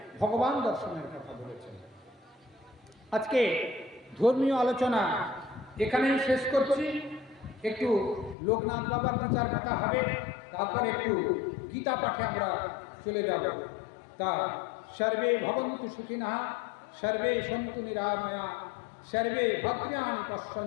ভগবান দর্শনের কথা বলেছেন। আজকে ধর্মীয় আলোচনা এখানেই শেষ করছি। একটু লোকনাথ বাবার বিচার কথা হবে, তারপরে একটু গীতা পাঠে আমরা চলে যাব। তা সর্বে ভবন্তু সুখিনঃ, সর্বে সন্তু নিরাময়া, সর্বে ভদ্রাণি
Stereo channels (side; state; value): right; drops out; at 8.3 s